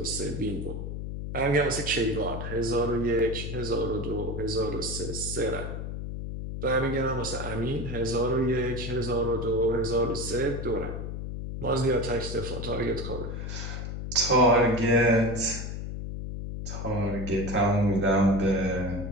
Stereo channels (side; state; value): left; noise; hum, 6 dB below the sound